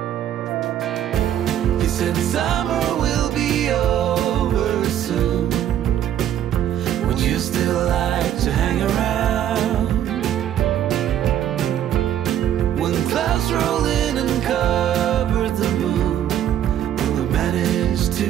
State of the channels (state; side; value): quieter; left; 10.9 dB